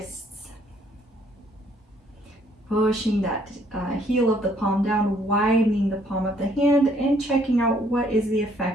Pushing that heel of the palm down, widening the palm of the hand, and checking out what is the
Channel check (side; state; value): both; normal; correlation 0.65